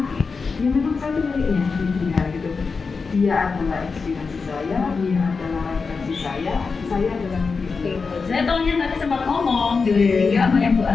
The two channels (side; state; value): right; quieter; 4.8 dB